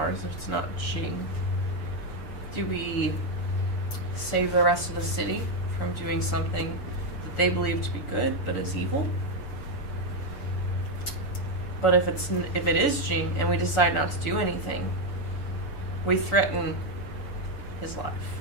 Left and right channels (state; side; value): late; right; 6.9 ms